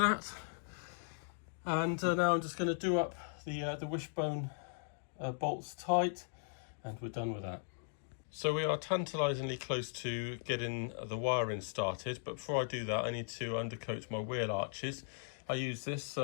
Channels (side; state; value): right; silent; digital silence